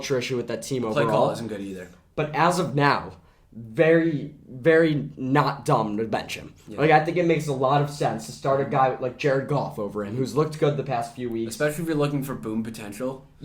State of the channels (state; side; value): identical; both; correlation 1.00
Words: issue with that team overall. Play call isn't good either. But as of now, very, very not dumb to bench him. Yeah. Like, I think it makes a lot of sense to start a guy like Jared Goff over him, who's looked good the past few weeks. Especially if you're looking for boom potential.